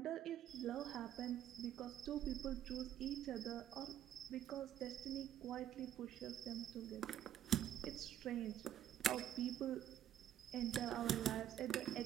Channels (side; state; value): left; quieter; 11.1 dB